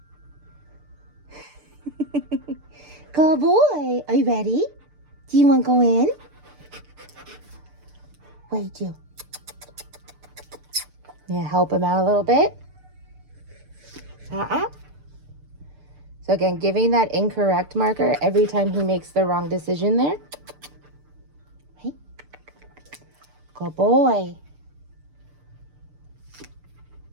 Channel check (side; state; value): left; late; 6.7 ms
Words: Good boy. Are you ready? Do you want to go in? What do you do? Yeah, help him out a little bit. So again, giving that incorrect marker every time he makes the wrong decision there. Hey. Good boy.